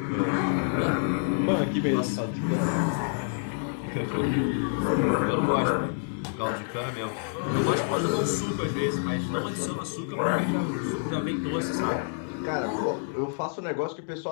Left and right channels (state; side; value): silent; right; digital silence